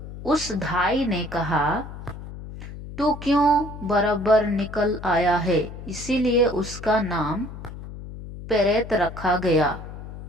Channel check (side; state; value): left; noise; hum, 12 dB below the sound